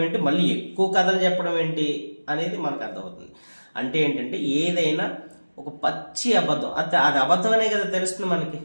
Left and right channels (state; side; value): inverted; both; correlation -1.00